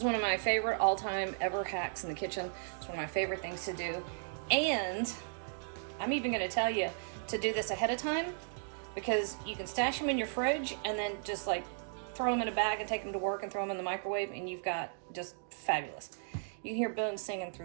one of my favorite all-time ever hacks in the kitchen. It's one of my favorite things to do. And I'm even gonna tell you to do this ahead of time because you can stash them in your fridge and then just like throw them in a bag and take them to work and throw them in the microwave and you've got just fabulous. You can hear Boom singing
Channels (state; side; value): silent; left; digital silence